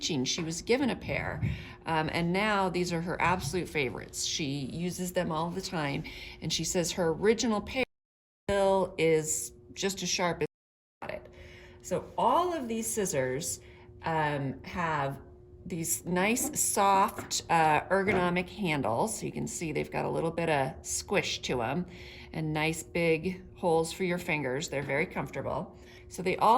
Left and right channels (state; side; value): identical; both; correlation 1.00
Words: She was given a pair, and now these are her absolute favorites. She uses them all the time, and she says her original pair still is just as sharp as she got it. So all of these scissors have these nice soft ergonomic handles. So you can see they've got a little bit of squish to them and nice big holes for your fingers. They're very comfortable. So they